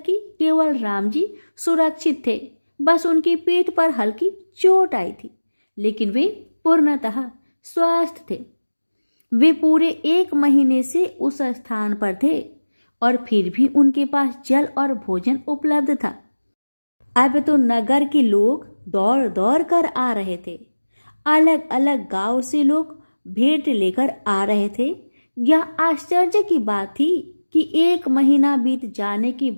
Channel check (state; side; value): inverted; both; correlation -1.00